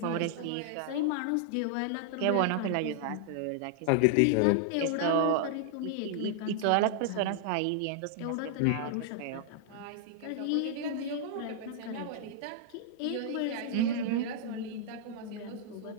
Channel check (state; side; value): different; both; correlation -0.01